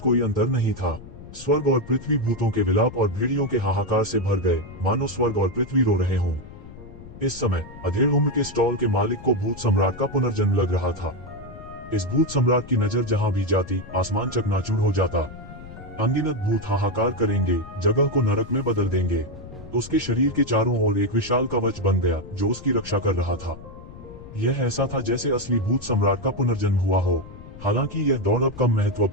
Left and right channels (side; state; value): left; noise; rumble, 16 dB below the sound